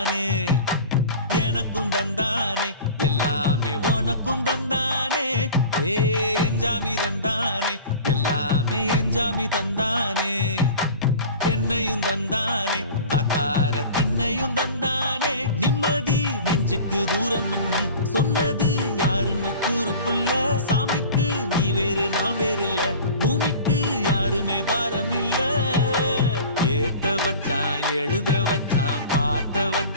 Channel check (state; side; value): inverted; both; correlation -0.39